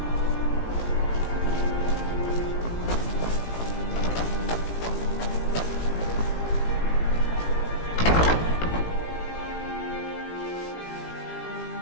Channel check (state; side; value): late; right; 18 ms